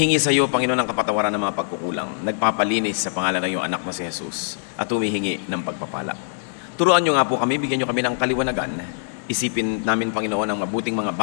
sa iyo, Panginoon, ang kapatawaran ng mga pagkukulang. Nagpapalinis sa pangalan ng iyong anak na si Jesus at humihingi ng pagpapala. Turuan niyo nga po kami, bigyan niyo kami ng kaliwanagan. Isipin namin, Panginoon, ang mabuting mga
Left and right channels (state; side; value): silent; right; 63 dB below the other